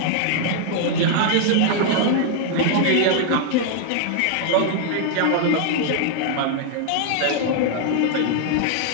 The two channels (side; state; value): both; different; correlation 0.00